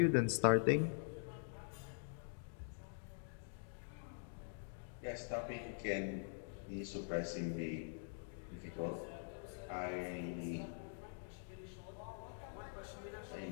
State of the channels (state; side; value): silent; right; digital silence